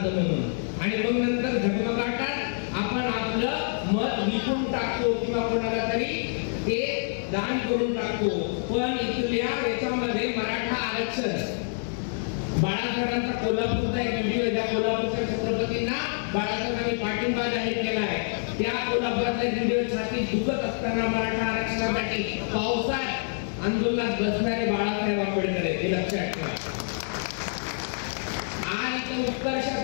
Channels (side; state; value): right; silent; 57 dB below the other